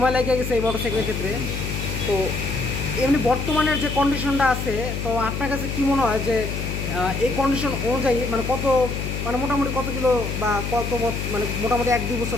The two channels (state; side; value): noise; left; hum, 4 dB below the sound